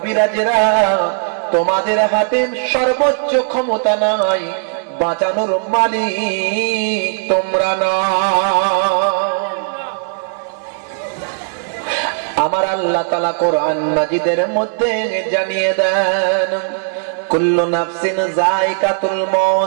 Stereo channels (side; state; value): left; silent; 68 dB below the other